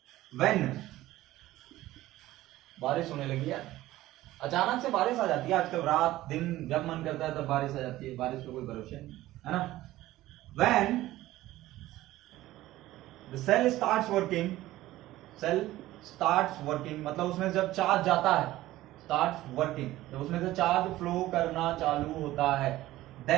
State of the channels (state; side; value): quieter; left; 16.0 dB